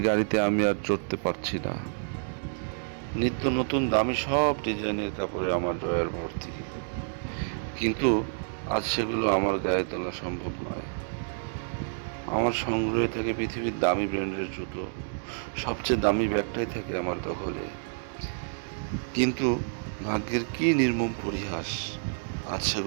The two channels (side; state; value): left; silent; digital silence